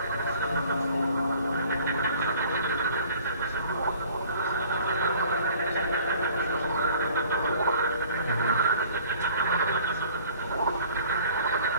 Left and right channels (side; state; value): both; inverted; correlation -0.52